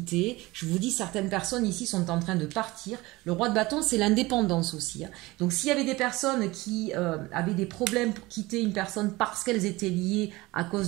Je vous dis, certaines personnes ici sont en train de partir. Le roi de bâton, c'est l'indépendance aussi. Hein. Donc, s'il y avait des personnes qui avaient des problèmes pour quitter une personne parce qu'elles étaient liées à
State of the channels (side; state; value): left; quieter; 20.8 dB